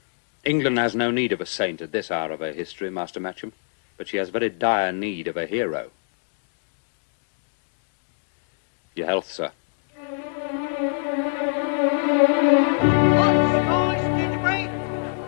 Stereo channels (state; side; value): silent; right; digital silence